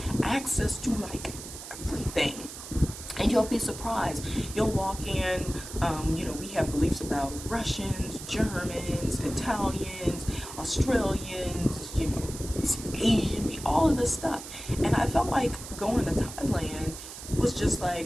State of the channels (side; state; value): right; noise; hiss, 12 dB below the sound